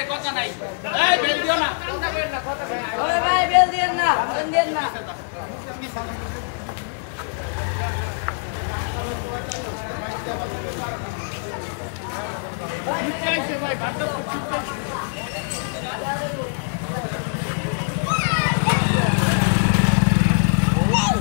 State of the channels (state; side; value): silent; right; digital silence